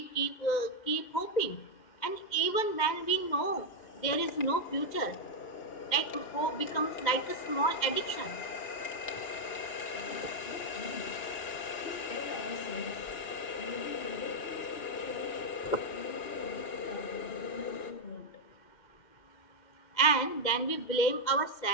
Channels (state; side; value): late; right; 2.1 ms